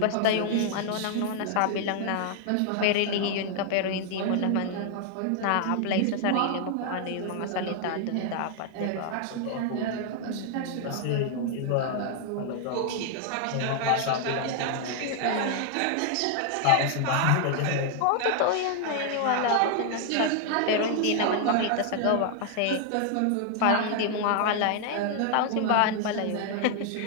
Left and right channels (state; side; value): different; both; correlation 0.00